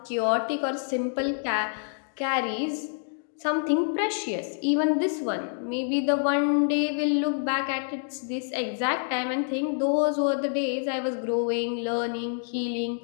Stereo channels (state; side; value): silent; right; digital silence